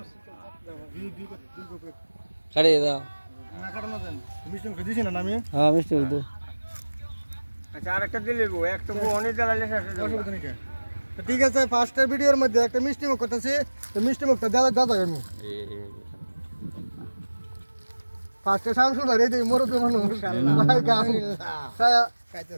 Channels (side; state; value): both; inverted; correlation -1.00